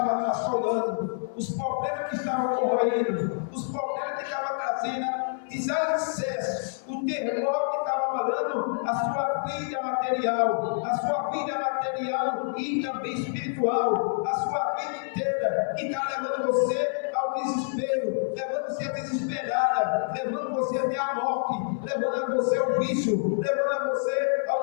assolando, os problemas que estavam corroendo, os problemas que estavam trazendo desalicerce, o terremoto que estava abalando a sua vida material e também espiritual, a sua vida inteira, que está levando você ao desespero, levando você a desesperada, levando você até a morte, levando você ao vício, levando você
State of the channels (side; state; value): right; silent; 58 dB below the other